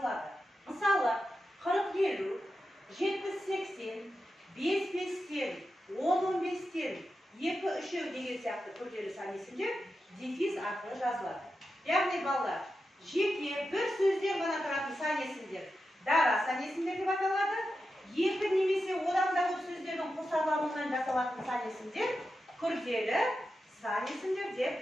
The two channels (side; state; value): both; normal; correlation 0.90